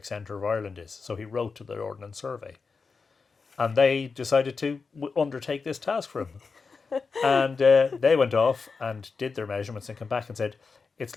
centre of Ireland is. So he wrote to the Ordnance Survey, and they decided to undertake this task for him. And they went off and did their measurements and came back and said, it's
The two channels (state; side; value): quieter; right; 4.8 dB